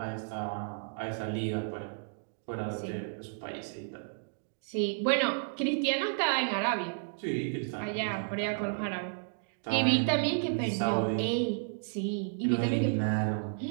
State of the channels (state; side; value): silent; left; digital silence